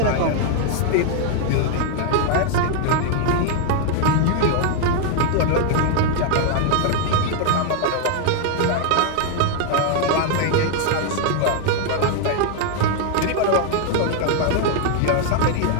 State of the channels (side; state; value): both; different; correlation 0.00